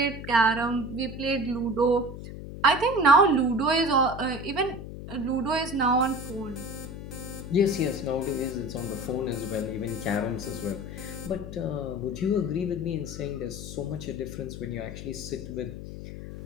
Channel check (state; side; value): noise; left; hum, 10 dB below the sound